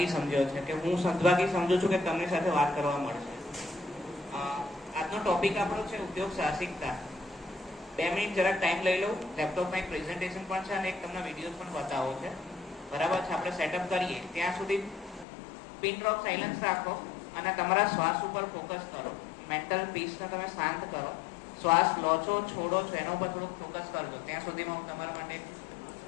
સમજ્યો છે, કે હું સદભાગી સમજુ છું કે તમારી સાથે વાત કરવા મળશે. આજનો ટોપિક આપણો છે ઉદ્યોગ સાહસિકતા. 2 મિનિટ જરાક ટાઈમ લઈ લઉં. લેપટોપમાં એક પ્રેઝન્ટેશન પણ છે અને એક તમને વિડીયો પણ બતાવો છે. બરાબર છે? આપણે સેટઅપ કરીએ ત્યાં સુધી પિન ડ્રોપ સાયલન્સ રાખો અને તમારા શ્વાસ ઉપર ફોકસ કરો. મેન્ટલ પીસને તમે શાંત કરો. શ્વાસ લો છો, છોડો છો, એના ઉપર થોડુંક ફોકસ કરજો. ત્યાં સુધીમાં હું તમારા માટે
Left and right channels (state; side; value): drops out; right; at 15.2 s